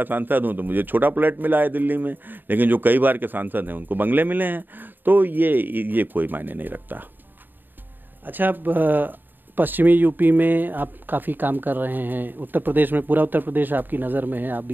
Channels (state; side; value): late; left; 0.092 ms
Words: सांसद हूँ, तो मुझे छोटा प्लेट मिला है दिल्ली में, लेकिन जो कई बार के सांसद हैं उनको बंगले मिले हैं। तो ये कोई मायने नहीं रखता। अच्छा, पश्चिमी यूपी में आप काफ़ी काम कर रहे हैं, उत्तर प्रदेश में, पूरा उत्तर प्रदेश आपकी नज़र में है, आप